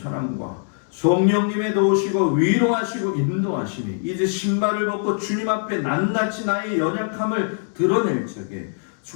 성령님의 도우시고 위로하시고 인도하심이 이제 신발을 벗고 주님 앞에 낱낱이 나의 연약함을 드러낼 적에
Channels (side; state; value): right; silent; 64 dB below the other